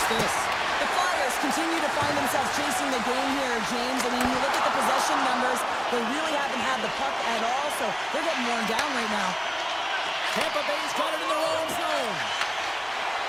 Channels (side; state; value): both; identical; correlation 1.00